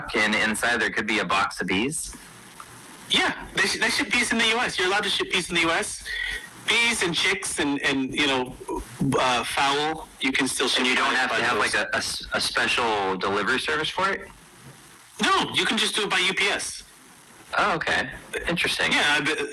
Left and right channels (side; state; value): both; identical; correlation 1.00